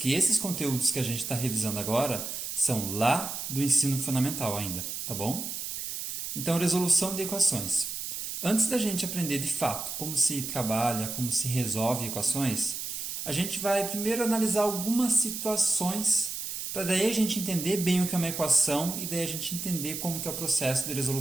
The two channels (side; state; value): right; noise; hiss, 5 dB below the sound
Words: esses conteúdos que a gente está revisando agora são lá do ensino fundamental ainda, tá bom? Então, resolução de equações. Antes da gente aprender de fato como se trabalha, como se resolve equações, a gente vai primeiro analisar algumas situações para daí a gente entender bem o que é uma equação e daí a gente entender como que é o processo de